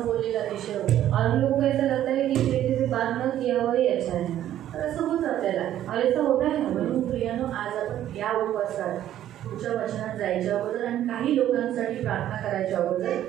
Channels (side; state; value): left; quieter; 11.9 dB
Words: बोललेला अतिशय होतं. और हम लोगों को ऐसा लगता है कि इस व्यक्ति से बात न किया हुआ ही अच्छा है. तर असं होतं आपल्याला. और ऐसा होता है. म्हणून प्रियानो आज आपण या उपवासात पुढच्या वचनात जायच्या अगोदर आणि काही लोकांसाठी प्रार्थना करायच्या अगोदर